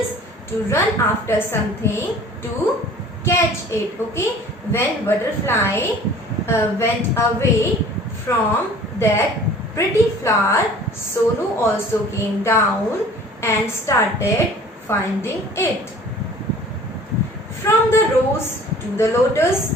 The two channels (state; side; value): normal; both; correlation 0.48